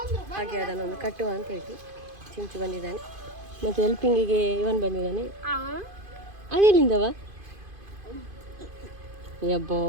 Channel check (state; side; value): late; left; 2.5 ms